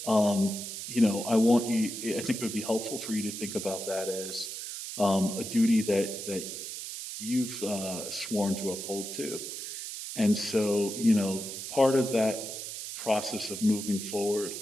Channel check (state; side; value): noise; right; hiss, 7 dB below the sound